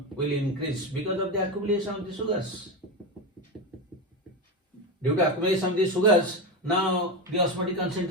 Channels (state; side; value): normal; both; correlation 0.16